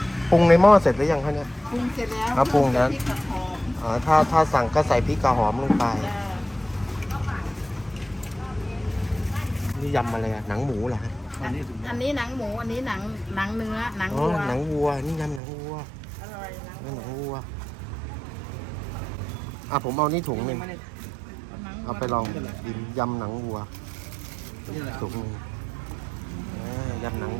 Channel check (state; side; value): drops out; left; at 15.4 s